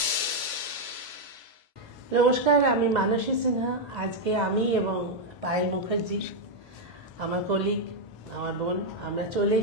নমস্কার, আমি মানসী সিনহা। আজকে আমি এবং পায়েল মুখার্জি, আমার কলিগ, আমার বোন, আমরা চলে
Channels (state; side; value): normal; both; correlation 0.00